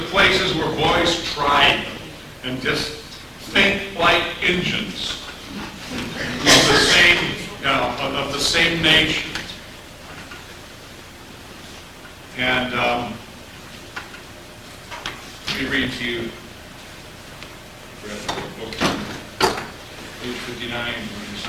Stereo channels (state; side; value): identical; both; correlation 1.00